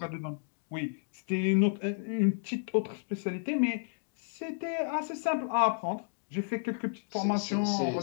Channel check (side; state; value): right; silent; digital silence